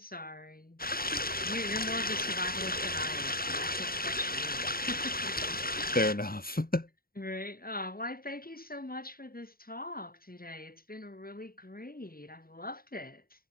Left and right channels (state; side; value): late; right; 0.43 ms